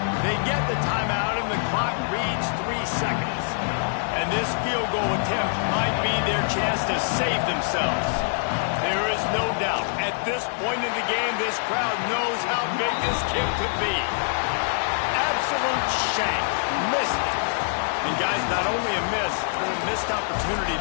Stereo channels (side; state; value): right; silent; digital silence